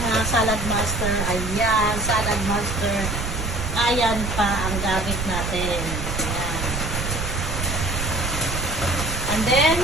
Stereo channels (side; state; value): right; noise; rumble, 4 dB below the sound